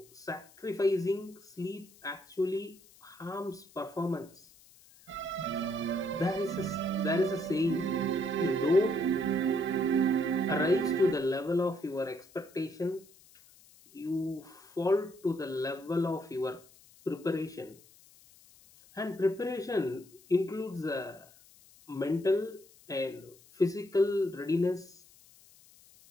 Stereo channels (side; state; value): left; noise; hiss, 26 dB below the sound